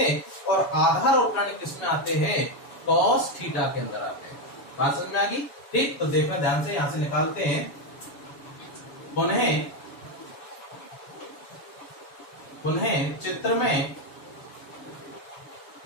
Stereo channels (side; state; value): right; late; 7.1 ms